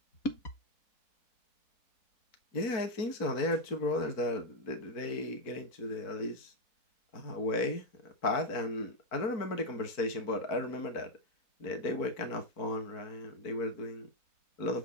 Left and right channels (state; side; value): late; right; 4.5 ms